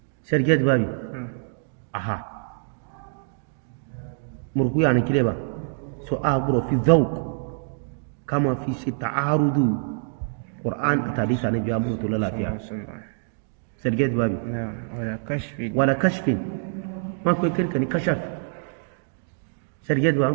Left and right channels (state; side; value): silent; left; digital silence